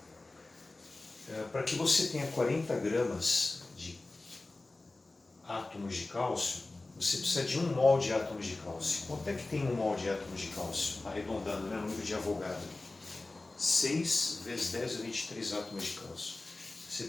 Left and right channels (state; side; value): quieter; right; 3.1 dB